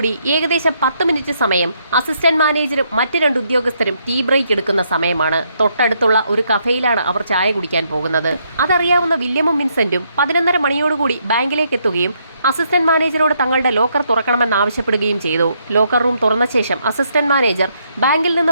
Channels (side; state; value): both; inverted; correlation -0.74